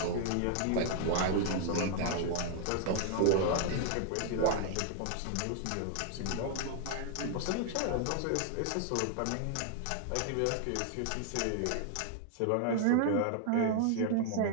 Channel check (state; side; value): different; both; correlation 0.00